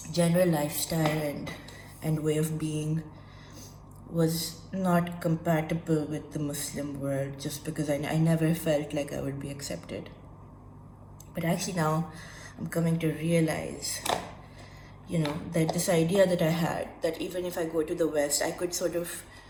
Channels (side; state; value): both; identical; correlation 1.00